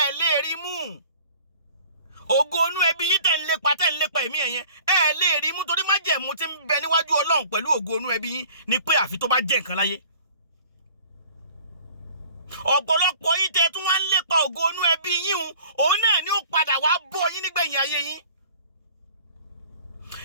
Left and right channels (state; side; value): inverted; both; correlation -0.48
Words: lè rí mú. Ògo inú ẹbí yín tẹ̀ ń lépa ẹ̀mí ẹ̀yẹn, ẹ̀ lè rí mú, torí májẹ̀mú tí ń bẹ níwájú Ọlọ́run pẹ̀lú ògo inú ẹbí yín ni pé àfi tó bá jẹ́ nǹkan láyé. Ọ̀pọ̀lọpọ̀ yín tẹ́ tún wá ń lépa ògo inú ẹbí yín, òun náà ni ó padà wá bọ́ yín nígbẹ̀yìn ayé yín.